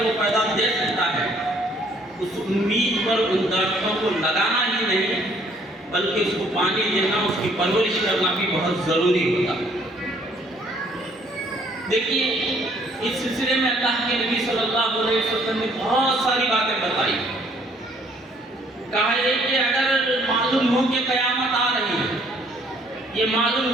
وہ پیدا دے سکتا ہے، اس امید پر ان درختوں کو لگانا ہی نہیں بلکہ اس کو پانی دینا، اس کی پرورش کرنا بھی بہت ضروری ہوتا ہے۔ دیکھیے اس سلسلے میں اللہ کے نبی صلی اللہ علیہ وسلم نے بہت ساری باتیں بتائی۔ کہا یہ کہ اگر معلوم ہو کہ قیامت آ رہی ہے، یہ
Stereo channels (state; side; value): normal; both; correlation 0.63